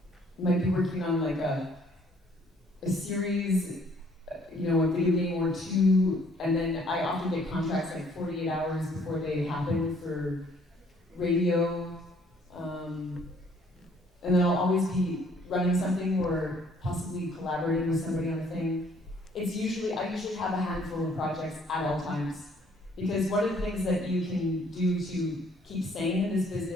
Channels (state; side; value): normal; both; correlation 0.62